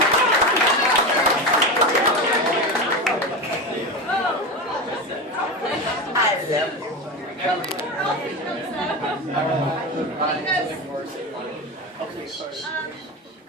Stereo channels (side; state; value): both; normal; correlation 0.21